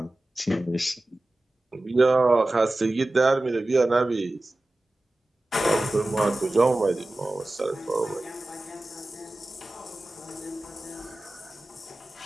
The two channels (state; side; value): normal; both; correlation 0.97